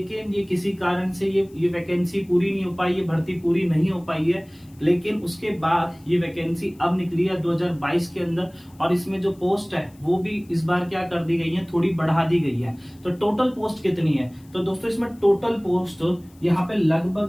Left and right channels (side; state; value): left; noise; hiss, 30 dB below the sound